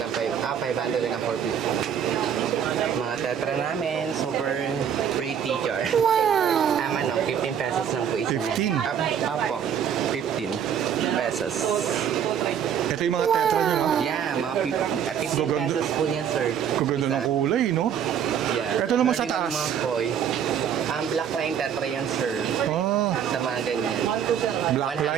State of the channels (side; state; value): left; quieter; 8.5 dB